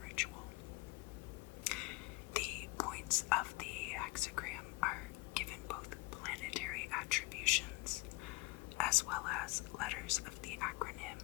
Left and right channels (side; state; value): right; quieter; 23.1 dB